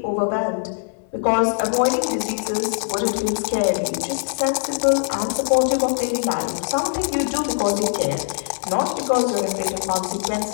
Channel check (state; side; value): silent; right; 60 dB below the other